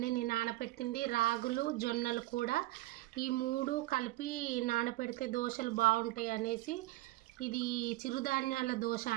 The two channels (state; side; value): quieter; left; 18.4 dB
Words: నేను నానబెట్టింది రాగులు జొన్నలు కూడా, ఈ మూడు కలిపి నానబెడితే దోశలు బాగుంటాయి అనేసి ఇది చిరుధాన్యాల దోశ